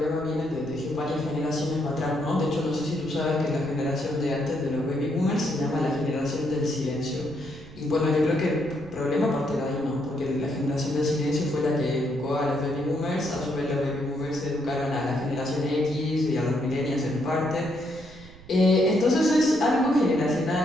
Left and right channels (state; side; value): noise; right; rumble, 19 dB below the sound